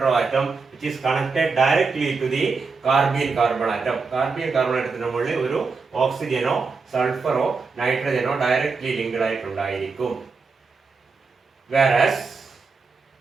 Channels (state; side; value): quieter; left; 4.6 dB